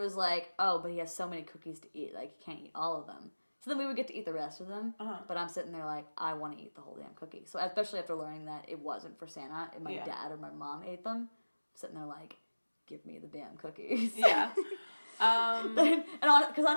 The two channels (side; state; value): both; inverted; correlation -1.00